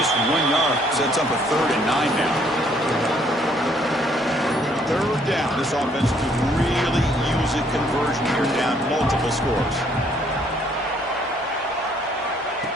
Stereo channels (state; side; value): normal; both; correlation 0.65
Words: 1 yard. Sets up a 3rd and 9 now. 3rd down. This offense could really use a conversion here, down multiple scores.